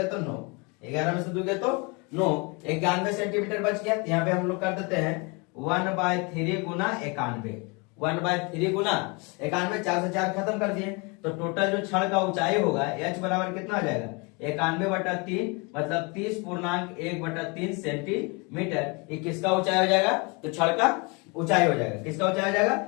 तो 9, 11 में से 2 गया तो 9, 91 सेंटीमीटर बच गया। यहाँ पे हम लोग कर देते हैं 1/3 गुना 91, 1/3 गुना 91, 4 से 4 खत्म कर दिए, तो टोटल जो छड़ का ऊंचाई होगा h बराबर कितना हो जाएगा 91/3, मतलब 30.1/3 सेंटीमीटर। ये किसका ऊंचाई हो जाएगा, तो छड़ का ऊंचाई हो जाएगा, किसका ऊंचाई हो जाएगा,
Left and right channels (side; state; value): right; quieter; 30.0 dB